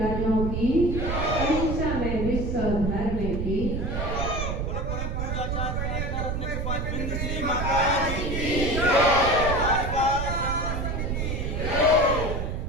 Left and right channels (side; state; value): right; noise; rumble, 2 dB below the sound